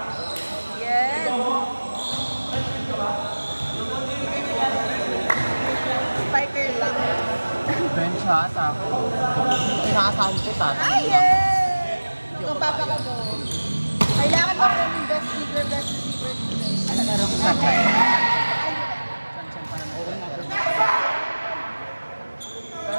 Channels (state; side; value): inverted; both; correlation -1.00